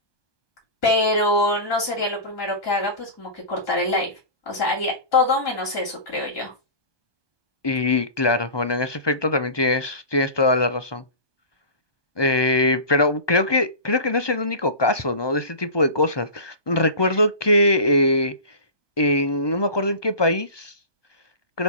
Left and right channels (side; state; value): right; late; 1.2 ms